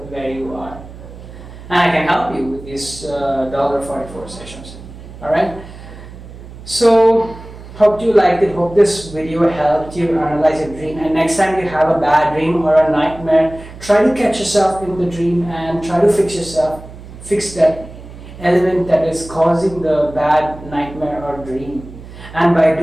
where you are. And I can help you with these $44 sessions. Alright? So, hope you liked it. Hope this video helped you analyze your dream. And next time you have a bad dream or a nightmare, try to catch yourself in the dream and try to fix yourself. Fix that element that is causing the bad nightmare or dream. And by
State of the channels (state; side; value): noise; right; hum, 16 dB below the sound